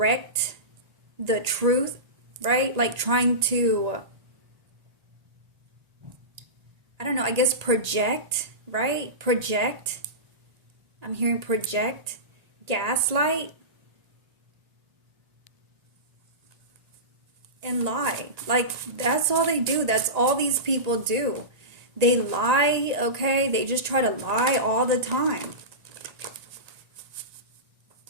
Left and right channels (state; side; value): late; left; 1.8 ms